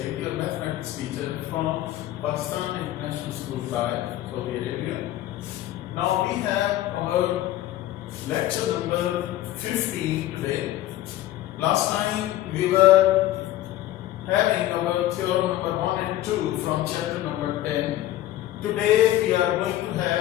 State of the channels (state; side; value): quieter; right; 14.2 dB